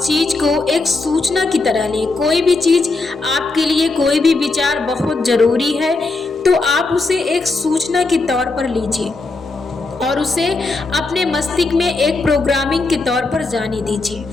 चीज को एक सूचना की तरह लें। कोई भी चीज आपके लिए, कोई भी विचार बहुत जरूरी है तो आप उसे एक सूचना के तौर पर लीजिए और उसे अपने मस्तिष्क में एक प्रोग्रामिंग के तौर पर जाने दीजिए।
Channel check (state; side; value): quieter; right; 3.5 dB